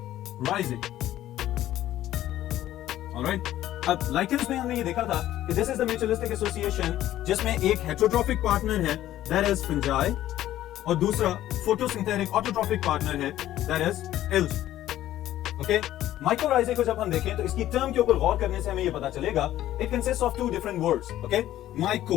Alright, अब lichens में हमने ये देखा था कि this is the mutualistic association जिसमें एक heterotrophic partner है that is fungi और दूसरा photosynthetic autotrophic partner है that is algae. Okay, mycorrhizae को जब हम देखें तो इसकी टर्म के ऊपर गौर करने से हमें ये पता चलेगा it consists of two different words. Okay,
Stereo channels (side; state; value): right; quieter; 13.4 dB